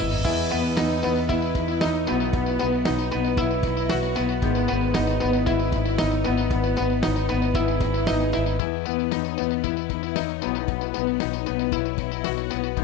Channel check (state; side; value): drops out; right; at 8.6 s